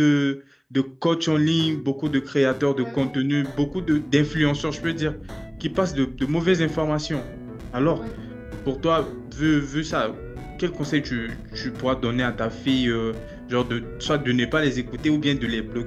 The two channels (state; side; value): identical; both; correlation 1.00